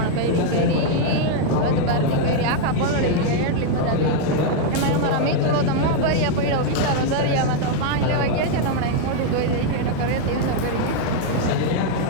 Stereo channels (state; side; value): different; both; correlation 0.00